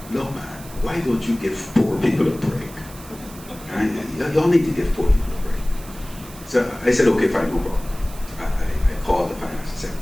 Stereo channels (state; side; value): noise; right; hiss, 18 dB below the sound